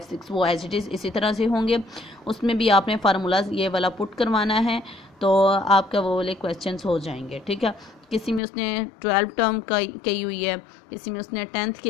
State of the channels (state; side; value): drops out; right; at 8.4 s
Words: 6 वो एज इट इज़ इसी तरह से होंगे। उसमें भी आपने फार्मूला ये वाला पुट करवाना है तो आपका वो वाले क्वेश्चंस हो जाएंगे। ठीक है, किसी में उसने 12 टर्म का कही हुई है, किसी में उसने 10th